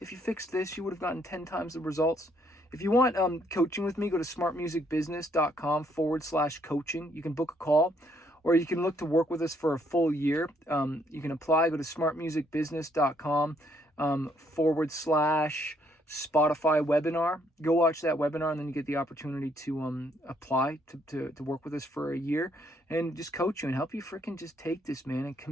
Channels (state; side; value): normal; both; correlation 0.69